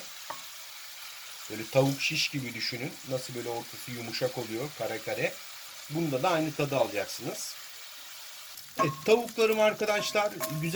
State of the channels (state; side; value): identical; both; correlation 1.00